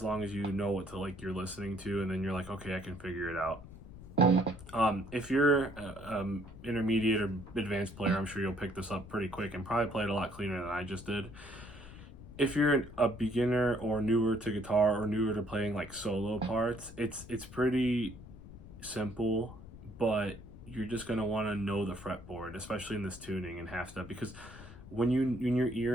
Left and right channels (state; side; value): noise; left; rumble, 16 dB below the sound